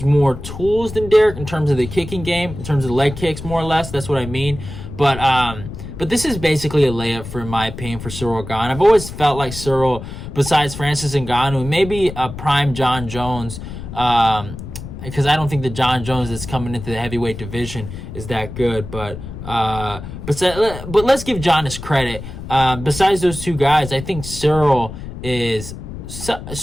more tools than Derek in terms of the kicking game, in terms of leg kicks, more or less. That's what I mean. But this is basically a layup, for my opinion, for Ciryl Gane. I've always felt like Ciryl, besides Francis Ngannou, maybe a prime John Jones, because I don't think the John Jones that's coming into the heavyweight division is that good. But let's give John his credit. Besides those two guys, I think Ciryl is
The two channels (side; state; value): left; noise; rumble, 10 dB below the sound